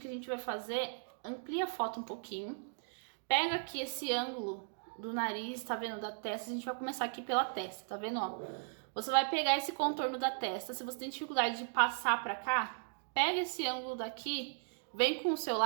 que a gente vai fazer, amplia a foto um pouquinho, pega aqui esse ângulo do nariz, tá vendo, da testa, a gente vai começar aqui pela testa, tá vendo, ó? Você vai pegar esse contorno da testa, se você tem dificuldade de passar pra cá, pega esse ângulo daqui, vem com o seu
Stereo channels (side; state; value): left; silent; digital silence